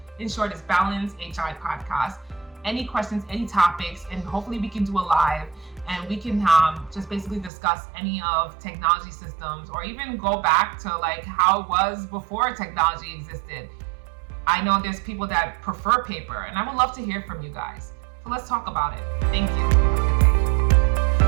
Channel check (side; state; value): left; drops out; at 7.5 s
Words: In short, it's Balance HI Podcast. Any questions, any topics, and hopefully we can do a live and we can just basically discuss any of technology systems, or even go back to like how it was before technology existed. I know there's people that prefer paper, and I would love to hear from you guys. So let's talk about it. Thank you.